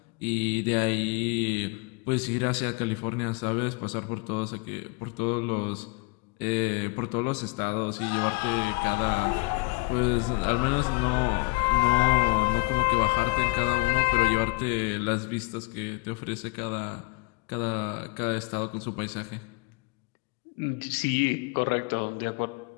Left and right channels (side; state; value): right; quieter; 26.7 dB